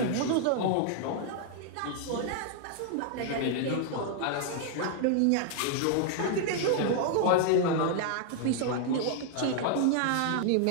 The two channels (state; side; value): different; both; correlation 0.00